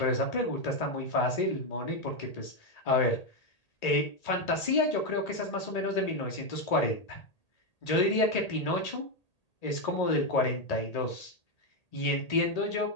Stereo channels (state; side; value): late; right; 1.8 ms